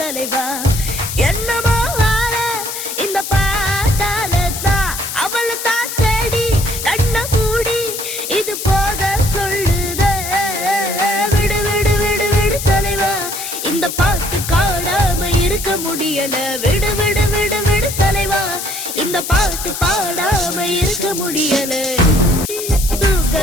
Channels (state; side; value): noise; left; hiss, 6 dB below the sound